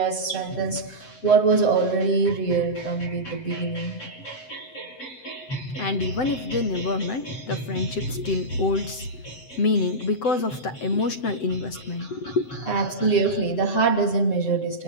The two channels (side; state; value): right; late; 7.8 ms